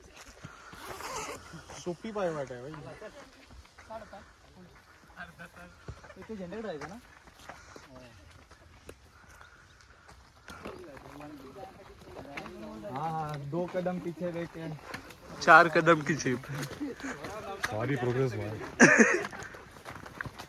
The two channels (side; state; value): both; identical; correlation 1.00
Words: सोपी पाय वाट आहे इथे झेंडे जायचं ना. हाँ, 2 कदम पीछे देखे 4 कदम की जीप। सारी प्रोग्रेस हुआ